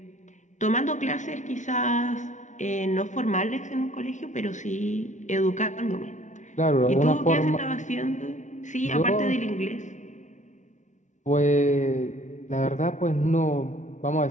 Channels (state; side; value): late; right; 0.36 ms